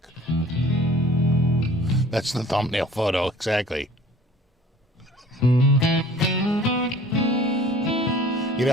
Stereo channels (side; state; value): both; normal; correlation 0.49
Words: That's the thumbnail photo, exactly. You